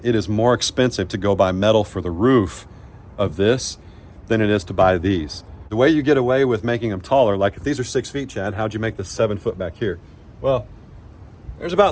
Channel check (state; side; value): identical; both; correlation 1.00